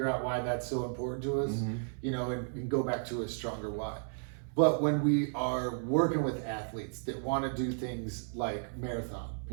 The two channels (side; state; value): left; silent; 55 dB below the other